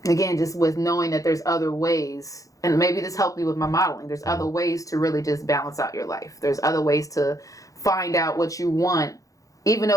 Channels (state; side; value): late; right; 0.16 ms